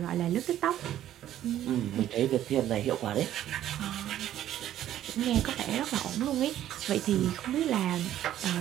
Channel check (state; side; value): quieter; left; 12.1 dB